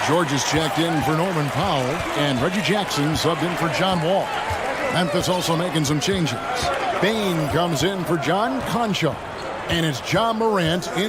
George is checked in for Norman Powell. And Reggie Jackson subbed in for John Wall. Memphis also making some changes. Bain comes in for John Concho. And it's John Morant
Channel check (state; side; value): identical; both; correlation 1.00